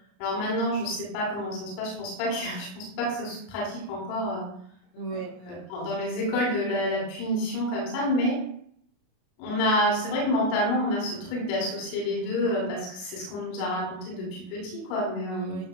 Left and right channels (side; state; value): right; late; 32 ms